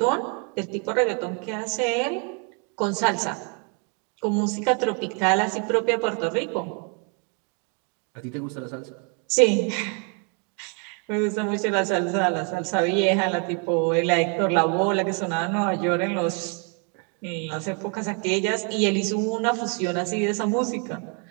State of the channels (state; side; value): quieter; left; 37.7 dB